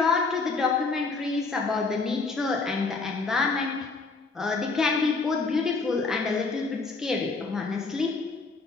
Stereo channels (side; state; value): right; quieter; 4.0 dB